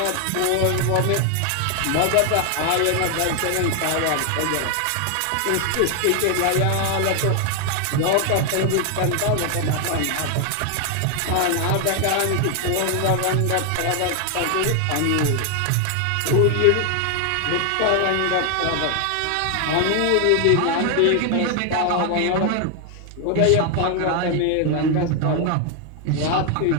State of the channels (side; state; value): both; different; correlation 0.00